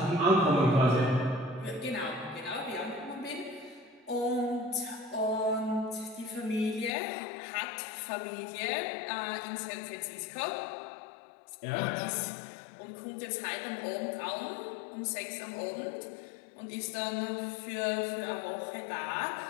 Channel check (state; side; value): drops out; right; at 6.9 s